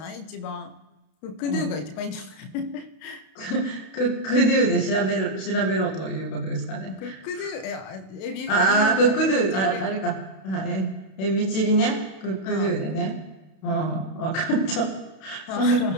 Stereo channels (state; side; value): late; right; 32 ms